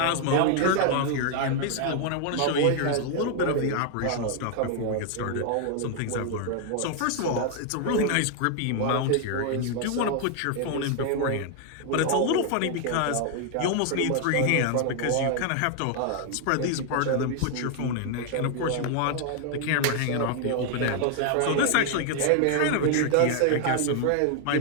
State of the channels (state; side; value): different; both; correlation 0.00